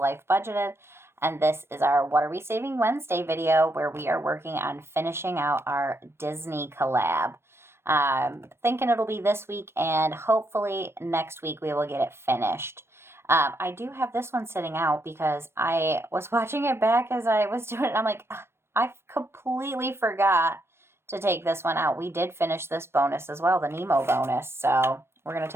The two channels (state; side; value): late; left; 0.12 ms